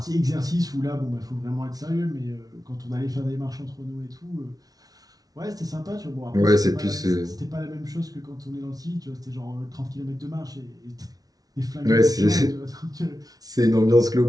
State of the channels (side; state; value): left; late; 0.18 ms